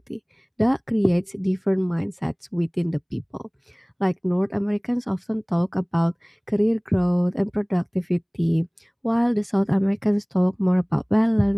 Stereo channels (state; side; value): identical; both; correlation 1.00